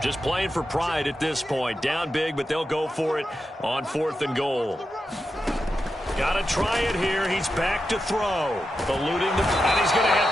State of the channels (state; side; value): normal; both; correlation 0.89